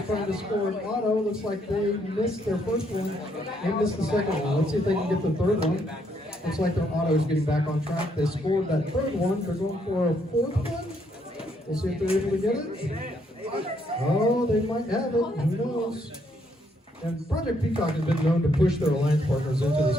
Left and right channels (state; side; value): normal; both; correlation 0.72